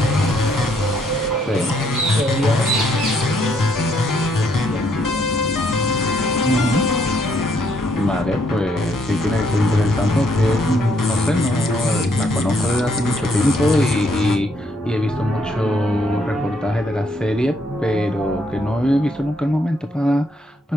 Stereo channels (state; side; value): normal; both; correlation 0.71